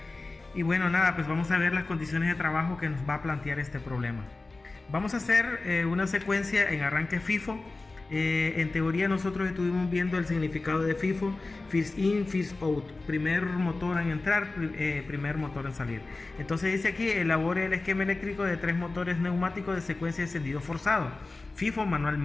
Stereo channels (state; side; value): quieter; right; 3.4 dB